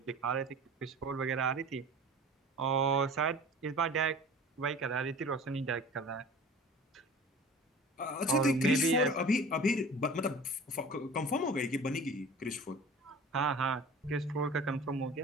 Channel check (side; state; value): both; normal; correlation 0.41